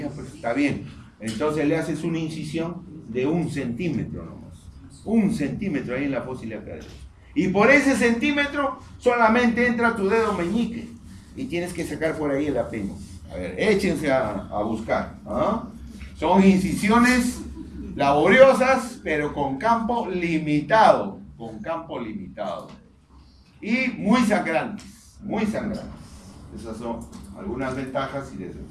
pues está bien. Entonces le haces una incisión de 1 centímetro nomás. 1 centímetro ahí en la fosa ilíaca derecha. Y por ese centímetro solamente entra tu dedo meñique. y tienes que sacar por ahí el apéndice. A ver, échense a buscar. ¿Ah? Son incisiones laboriosas, pero con campo limitado. Con campo limitado. Y muy sangrantes. Muy sangrantes. Esas son algunas ventajas y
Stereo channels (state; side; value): identical; both; correlation 1.00